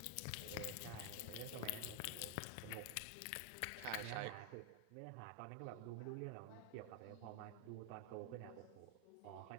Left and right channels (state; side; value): different; both; correlation 0.00